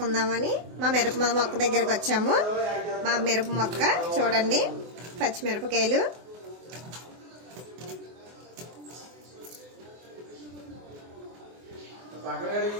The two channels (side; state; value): left; late; 24 ms